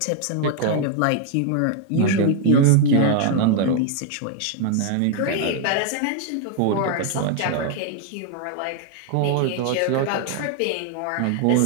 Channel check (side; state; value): both; different; correlation 0.00